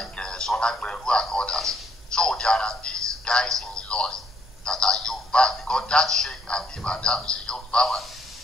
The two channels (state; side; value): normal; both; correlation 0.69